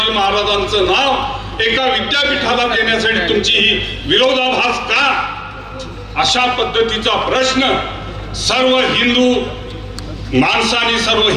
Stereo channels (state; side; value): identical; both; correlation 1.00